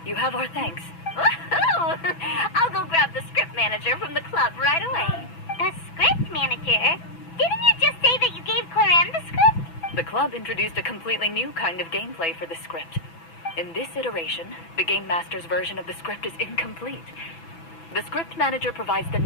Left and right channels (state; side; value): late; right; 6.0 ms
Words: You have our thanks. Woohoo! I'll go grab the script manager from the club right away. The script manager? Didn't you just say that you gave Clorinde the script? The club introduced a completely new kind of gameplay for the script. In this iteration, the Game Master's version of the script is incomplete. The script manager provides the